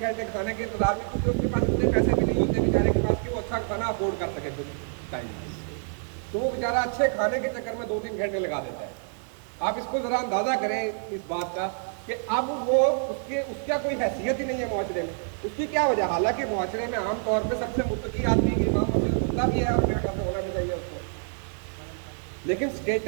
کھانے کے انتظار میں، کیونکہ اس کے پاس اتنے پیسے بھی نہیں ہوتے بیچارے کے پاس کہ وہ اچھا کھانا افورڈ کر سکے کچھ ٹائم، تو وہ بیچارہ اچھے کھانے کے چکر میں 2-3 گھنٹے لگا دیتا ہے۔ آپ اس کو ذرا اندازہ کریں اس بات کا کہ اب وہ اس کا کوئی حیثیت ہی نہیں ہے معاشرے میں. اس کی کیا وجہ؟ حالانکہ معاشرے میں عام طور پہ سب سے متقی آدمی کی امام مسجد ہوتا بھی ہے اور میرے خیال سے ہونا بھی چاہیے اس کو, لیکن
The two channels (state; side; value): silent; left; 60 dB below the other